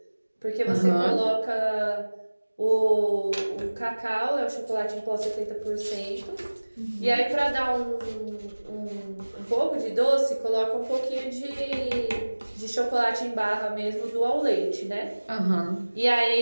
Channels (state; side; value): inverted; both; correlation -1.00